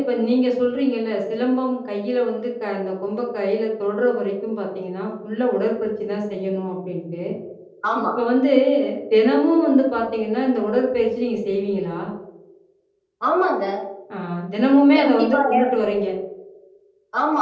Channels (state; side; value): identical; both; correlation 1.00